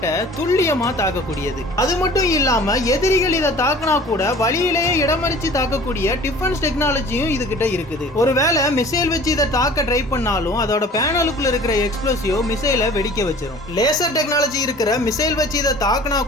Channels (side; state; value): both; normal; correlation 0.46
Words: துல்லியமா தாக்கக்கூடியது. அது மட்டும் இல்லாம எதிரிகள் இதை தாக்கினா கூட வழியிலேயே இடமறிச்சு தாக்கக்கூடிய டிஃபென்ஸ் டெக்னாலஜியும் இது கிட்ட இருக்குது. ஒருவேளை மிசைல் வச்சு இதை தாக்க ட்ரை பண்ணாலும் அதோட பேனலுக்குள்ள இருக்கிற எக்ஸ்ப்ளோசிவ் மிசைலை வெடிக்க வச்சிரும். லேசர் டெக்னாலஜி இருக்கிற மிசைல் வச்சு இதை தாக்கினா